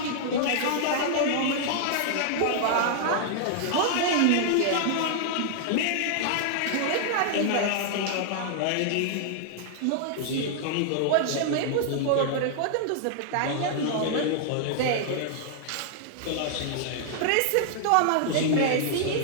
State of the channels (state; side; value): different; both; correlation -0.01